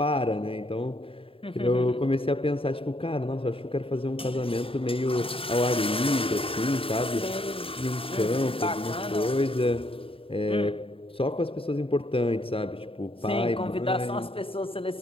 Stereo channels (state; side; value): late; right; 0.27 ms